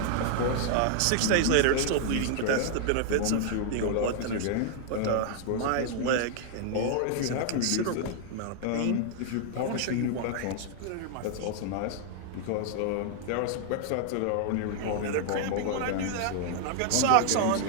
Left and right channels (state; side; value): different; both; correlation 0.00